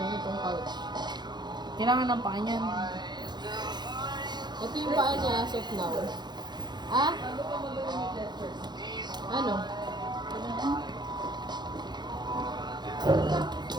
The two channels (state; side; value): late; left; 0.21 ms